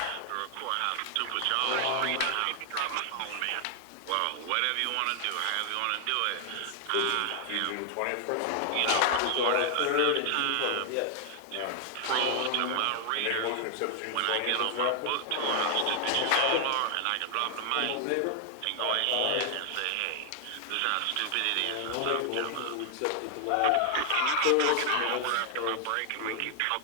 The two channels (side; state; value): both; different; correlation 0.00